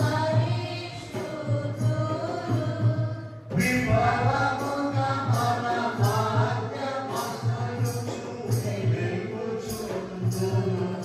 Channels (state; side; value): identical; both; correlation 1.00